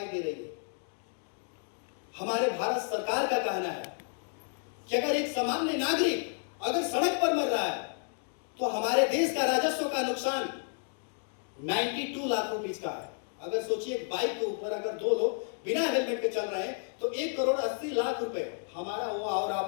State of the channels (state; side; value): silent; right; 56 dB below the other